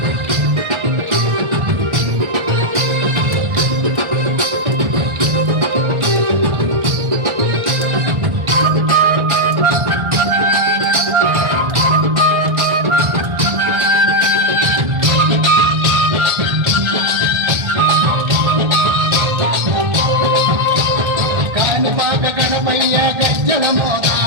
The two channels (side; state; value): left; late; 1.3 ms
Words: కాణిపాక గణపయ్య గజ్జల మోత